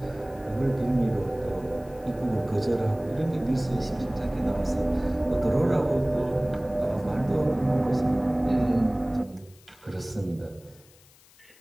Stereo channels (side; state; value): left; noise; hiss, 27 dB below the sound